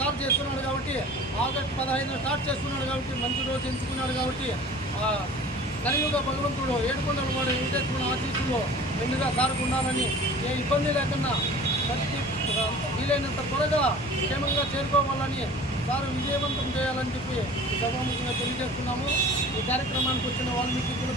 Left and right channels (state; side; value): normal; both; correlation 0.43